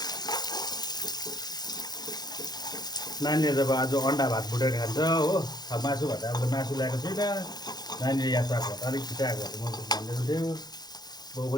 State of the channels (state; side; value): late; right; 0.20 ms